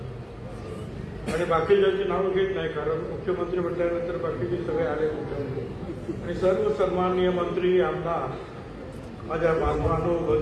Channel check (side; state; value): both; identical; correlation 1.00